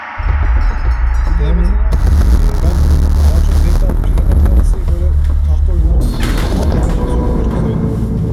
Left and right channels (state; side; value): identical; both; correlation 1.00